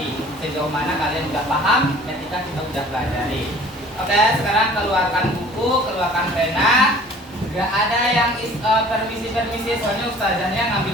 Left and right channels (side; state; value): both; normal; correlation 0.50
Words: Sejauh mana kalian sudah paham ketika kita sudah pelajari. Oke, sekarang keluarkan buku, keluarkan pena. Gak ada yang permisi, soalnya ustazahnya